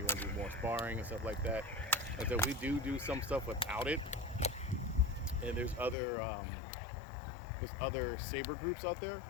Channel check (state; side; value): drops out; right; at 6.0 s